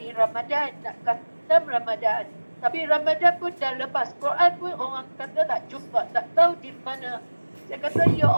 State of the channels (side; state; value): both; inverted; correlation -1.00